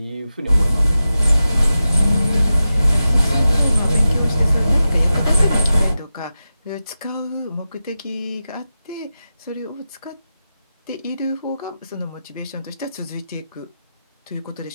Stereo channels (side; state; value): both; inverted; correlation -0.92